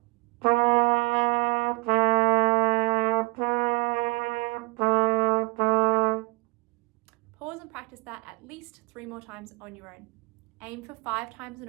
Pause and practice that at least 3 more times on your own. Aim for 5 times in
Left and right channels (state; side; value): quieter; left; 27.4 dB